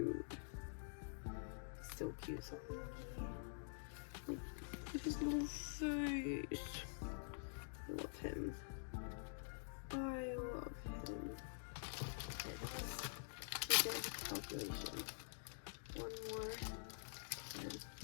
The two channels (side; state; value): right; silent; digital silence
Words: So cute. So Mingy. Look at his little face. I love him. I love him. Calculation. One more.